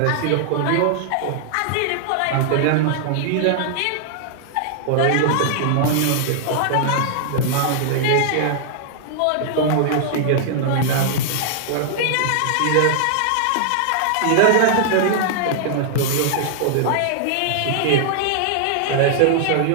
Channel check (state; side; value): different; both; correlation -0.01